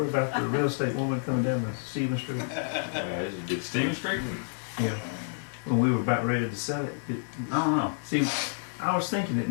about the real estate woman coming down the Stevens Street? This is good. Stephen Street? Yeah. When we were about ready to sell it. I don't know. See, I was thinking that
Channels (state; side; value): silent; right; digital silence